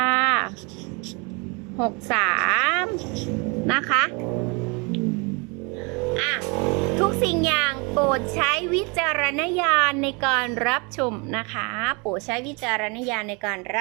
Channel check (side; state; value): left; quieter; 30.4 dB